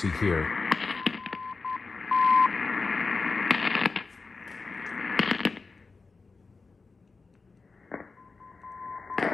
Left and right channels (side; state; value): right; quieter; 4.2 dB